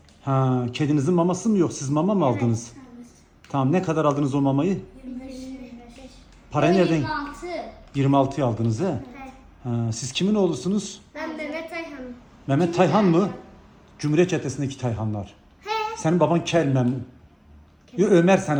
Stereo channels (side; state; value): both; identical; correlation 1.00